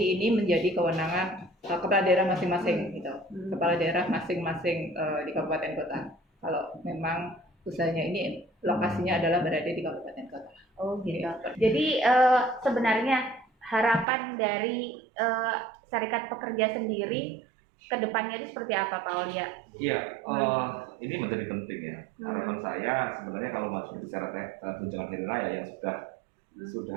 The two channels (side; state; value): left; drops out; at 14.1 s